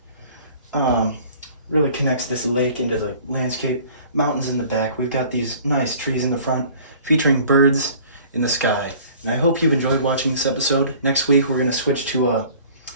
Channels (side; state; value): both; inverted; correlation -0.50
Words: Really connects this lake into the landscape. Mountains in the back. We've got these nice trees in the front featuring birds in the sky. And I hope you've enjoyed watching this episode. Next week we're going to switch to a